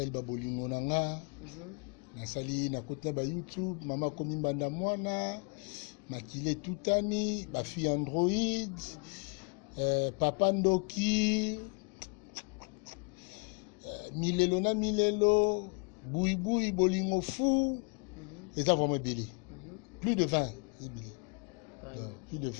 ba bolingo nanga na sali na kota ba YouTube mama komi mbanda mwana makile tutani ba fille Android papa Ndoki milelo boui bolingo fou et ça vraiment belé plus de 20 plus de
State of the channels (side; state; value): right; quieter; 34.8 dB